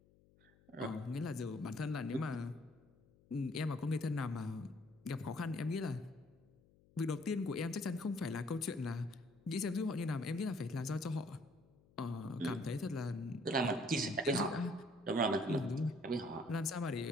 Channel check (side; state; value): left; noise; hum, 29 dB below the sound